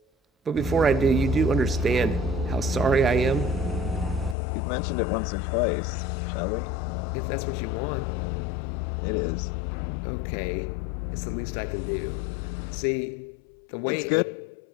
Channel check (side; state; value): right; drops out; at 4.4 s